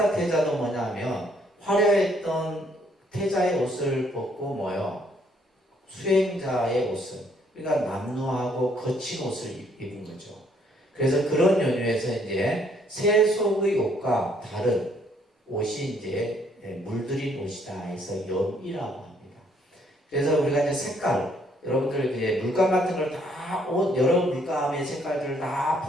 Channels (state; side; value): normal; both; correlation 0.67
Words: 태자도 뭐냐면 화려했던 태자의 옷을 벗고 수행자의 옷을, 그러니까 남루하고 거친 옷을 입은 거죠. 그래서 그런 연유에서 이제 세속의 옷과 다른 옷이 이제 물들인 옷이다 해서 염이라고 합니다. 그래서 우리가 이제 색깔, 여러분들 이제 물감 같은 걸 다 여러 물감의 색깔들을 다